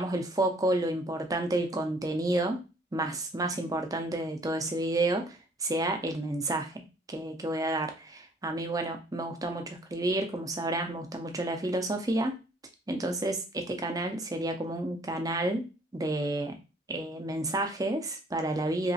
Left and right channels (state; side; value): normal; both; correlation 0.59